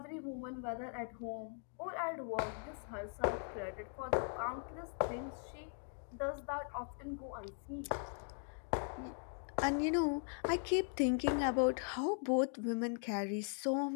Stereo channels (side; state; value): right; silent; 51 dB below the other